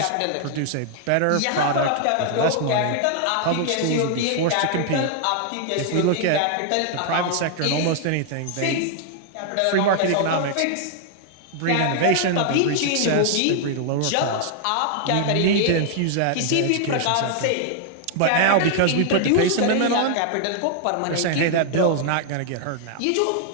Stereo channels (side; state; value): both; different; correlation 0.00